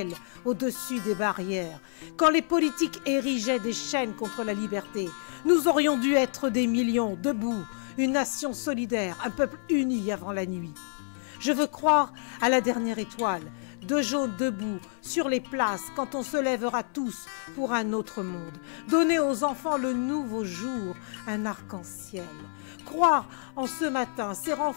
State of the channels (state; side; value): silent; right; 59 dB below the other